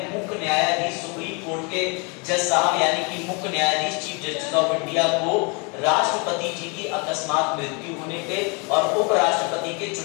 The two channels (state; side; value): quieter; right; 32.6 dB